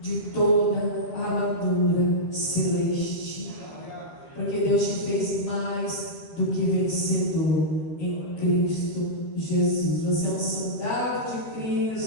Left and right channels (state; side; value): late; right; 13 ms